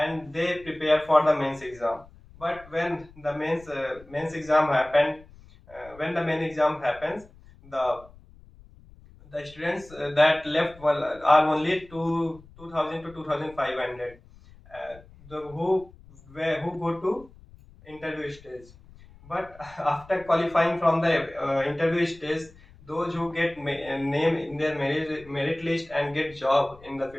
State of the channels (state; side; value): noise; left; rumble, 23 dB below the sound